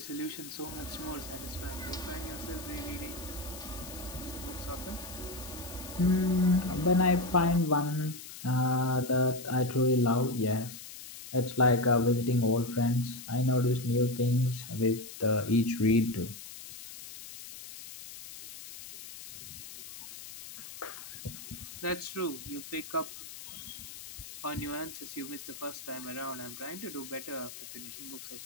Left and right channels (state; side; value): noise; left; hiss, 13 dB below the sound